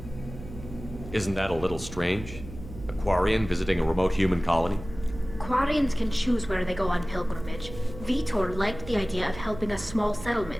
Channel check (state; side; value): noise; right; hum, 13 dB below the sound